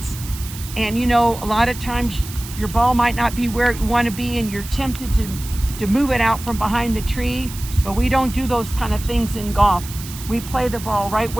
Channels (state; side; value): noise; right; hiss, 13 dB below the sound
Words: And you know, a lot of times your ball might not be where you want to be, and you're tempted to move it out from behind the tree, but we don't do those kind of things in golf. We play the ball right